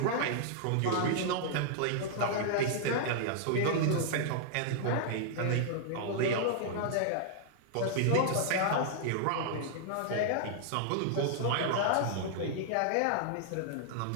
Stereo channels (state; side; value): different; both; correlation -0.01